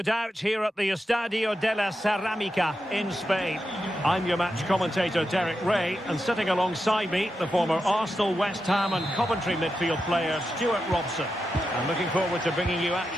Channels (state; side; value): normal; both; correlation 0.88